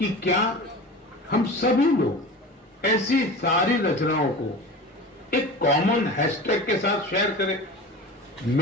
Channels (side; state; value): both; normal; correlation 0.33